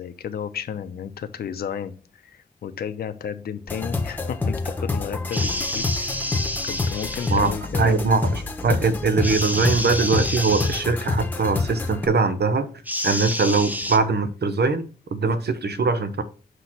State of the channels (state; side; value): normal; both; correlation 0.31